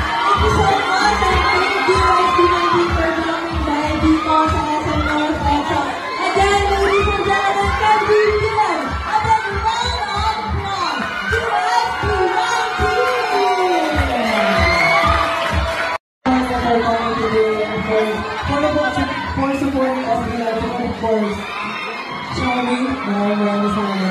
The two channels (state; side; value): identical; both; correlation 1.00